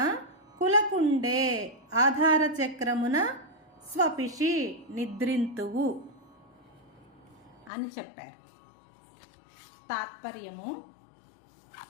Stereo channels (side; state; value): right; drops out; at 7.7 s